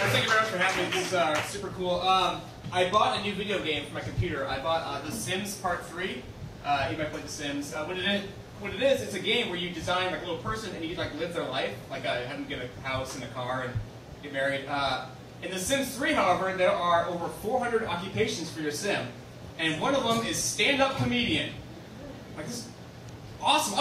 you very much for having me. This is super cool. I bought a new video game for my computer. I bought The Sims Part 3. You might play The Sims. What it is, it's a game where you design like a little person and you like live their life, like have them get a house and a car and get married. In The Sims 3, however, there are over 400 occupations for your sim, and one of them is stand-up comedian. Like this is awesome.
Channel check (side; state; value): both; identical; correlation 1.00